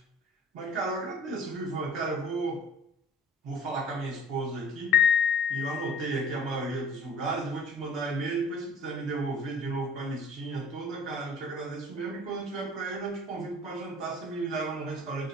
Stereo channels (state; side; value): normal; both; correlation 0.49